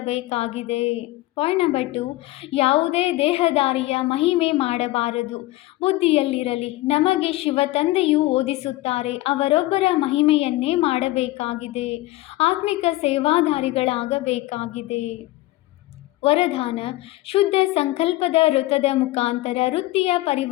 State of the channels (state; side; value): quieter; right; 18.0 dB